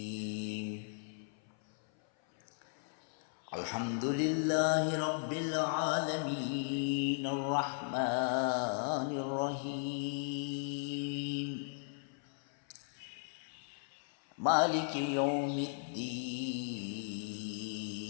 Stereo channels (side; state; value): right; silent; 53 dB below the other